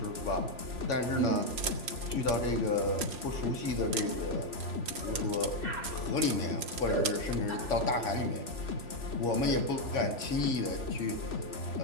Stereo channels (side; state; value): left; late; 3.4 ms